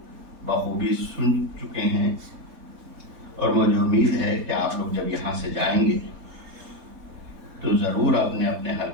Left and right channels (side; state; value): left; late; 3.8 ms